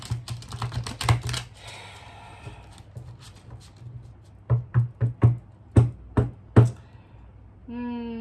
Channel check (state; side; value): identical; both; correlation 1.00